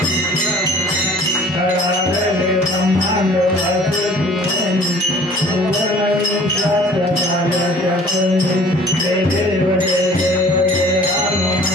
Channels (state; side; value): normal; both; correlation 0.50